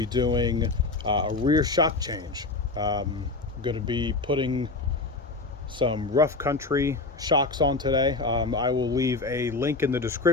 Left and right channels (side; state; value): right; quieter; 3.5 dB